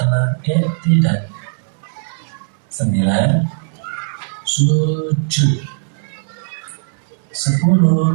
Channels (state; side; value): silent; left; 67 dB below the other